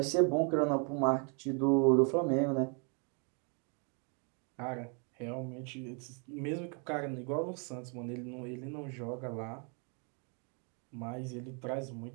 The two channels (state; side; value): quieter; left; 37.2 dB